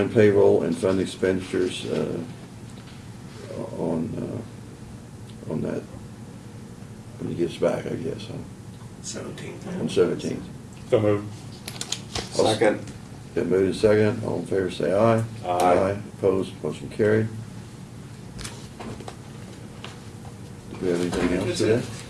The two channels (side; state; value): both; identical; correlation 1.00